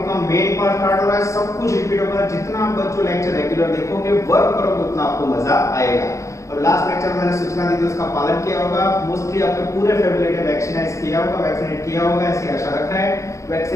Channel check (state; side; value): late; right; 0.15 ms